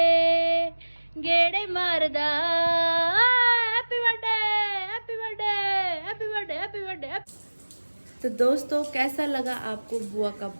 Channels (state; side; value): inverted; both; correlation -1.00